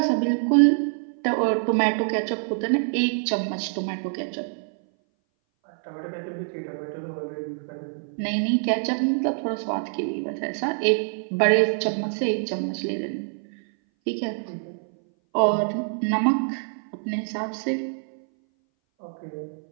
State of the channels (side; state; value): left; silent; 59 dB below the other